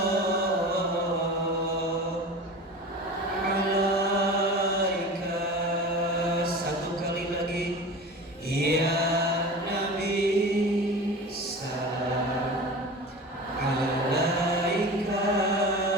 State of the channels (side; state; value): both; normal; correlation 0.33